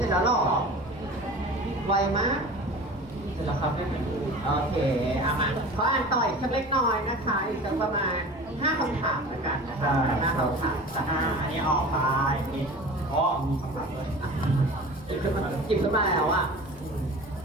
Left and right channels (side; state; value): both; normal; correlation 0.38